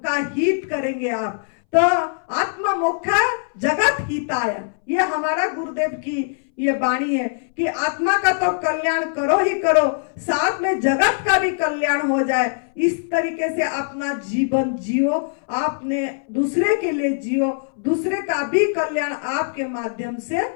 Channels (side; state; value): right; silent; 63 dB below the other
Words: का हित करेंगे आप। तो आत्म मोक्षा जगत हिताय, ये हमारा गुरुदेव की ये वाणी है कि आत्मा का तो कल्याण करो ही करो, साथ में जगत का भी कल्याण हो जाए। इस तरीके से अपना जीवन जियो, आपने दूसरे के लिए जियो, दूसरे का भी कल्याण आपके माध्यम से